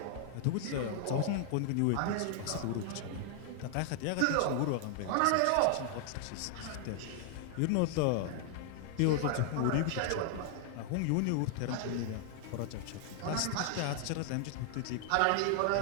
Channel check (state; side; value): different; both; correlation 0.00